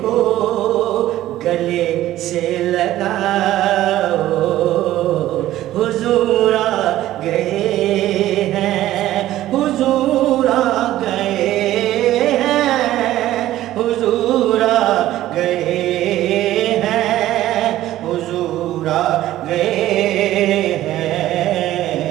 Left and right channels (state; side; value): quieter; left; 14.3 dB